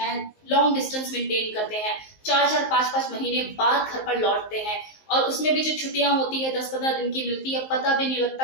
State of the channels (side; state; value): right; late; 19 ms